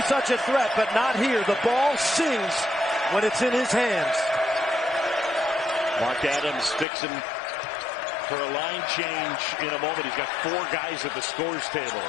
such a threat, but not here. The ball sings when it's in his hands. Mark Adams fixing for a line change in a moment. He's got 4 guys at the scores table.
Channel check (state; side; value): drops out; right; at 6.9 s